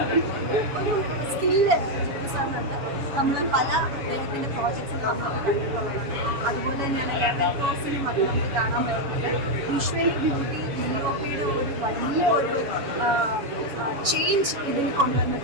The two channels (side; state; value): left; late; 7.0 ms